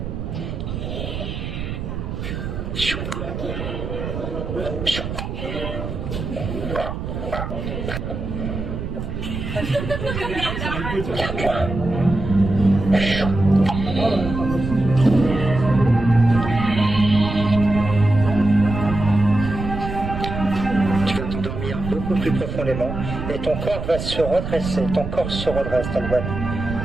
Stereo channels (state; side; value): noise; right; rumble, 6 dB below the sound